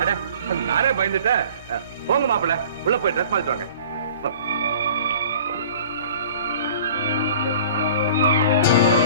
நானே பயந்துட்டேன். போங்க மாப்பிள்ள, உள்ள போய் ட்ரெஸ் மாத்திட்டு வாங்க.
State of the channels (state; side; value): inverted; both; correlation -0.46